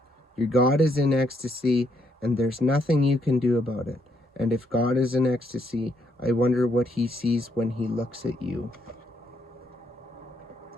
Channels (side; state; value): both; normal; correlation 0.74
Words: Your God is in ecstasy, and there's nothing you can do about it. And if God is in ecstasy, I wonder what he sees when he looks at you.